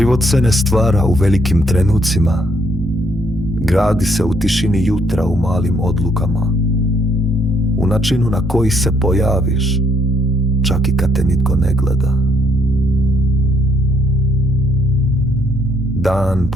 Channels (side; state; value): both; normal; correlation 0.70